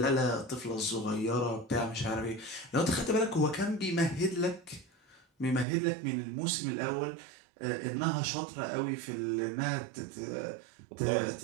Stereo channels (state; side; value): drops out; left; at 5.7 s